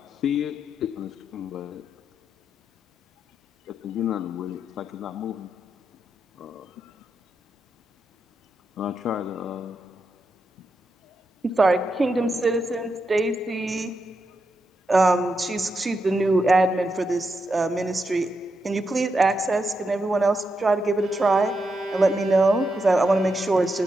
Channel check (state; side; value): normal; both; correlation 0.85